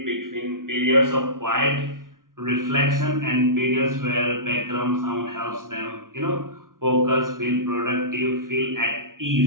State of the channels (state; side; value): late; left; 0.89 ms